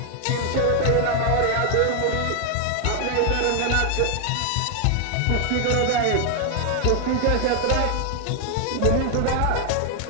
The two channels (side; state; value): both; different; correlation 0.00